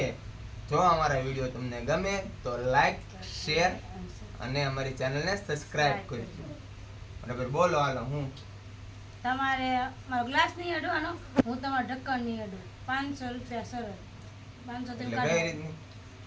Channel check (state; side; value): identical; both; correlation 1.00